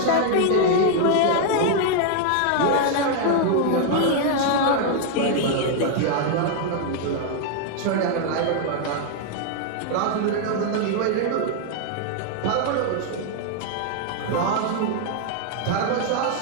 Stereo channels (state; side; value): different; both; correlation 0.00